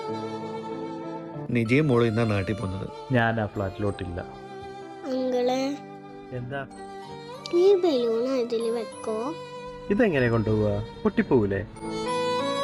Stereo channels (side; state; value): both; identical; correlation 1.00